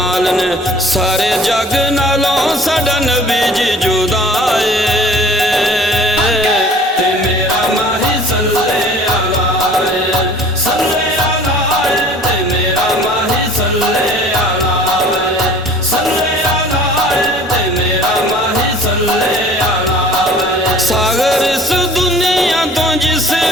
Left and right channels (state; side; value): normal; both; correlation 0.49